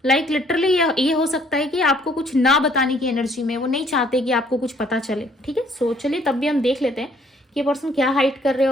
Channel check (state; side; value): normal; both; correlation 0.62